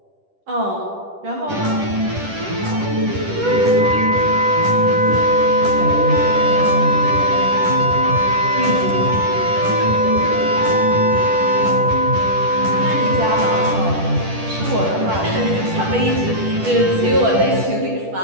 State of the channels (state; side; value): late; left; 10 ms